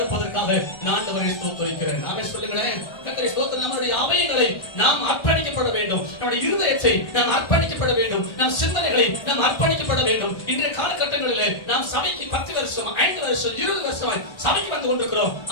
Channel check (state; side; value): late; right; 1.4 ms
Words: நான் ஆண்டவரை ஸ்தோத்திரிக்கிறேன். நாம சொல்லுங்களேன், கர்த்தரை ஸ்தோத்திரம். நம்முடைய அவைகளை நாம் அர்ப்பணிக்கப்பட வேண்டும், நம்முடைய இருதயத்தை நாம் அர்ப்பணிக்கப்பட வேண்டும், நம் சிந்தனைகளை நாம் அர்ப்பணிக்கப்பட வேண்டும். இன்றைய காலகட்டங்களிலே நாம் சபைக்கு 10 வருஷம் 5 வருஷம் 20 வருஷமாய் சபைக்கு வந்து கொண்டிருக்கிறோம்.